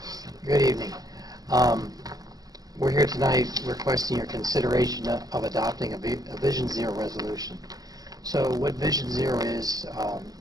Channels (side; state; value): left; late; 0.18 ms